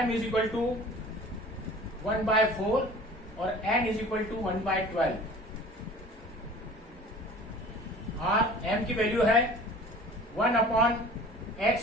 is equal to 1/4 और n is equal to 1/12, और m की वैल्यू है 1 upon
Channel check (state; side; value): normal; both; correlation 0.44